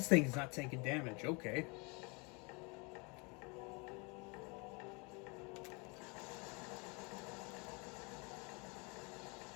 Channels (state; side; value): quieter; right; 30.5 dB